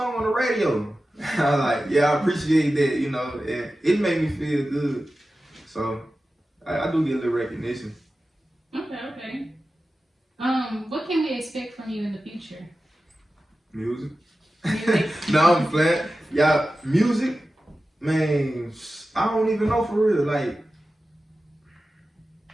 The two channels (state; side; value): normal; both; correlation 0.94